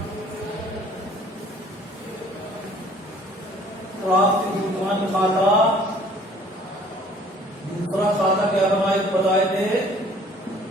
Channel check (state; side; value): normal; both; correlation 0.54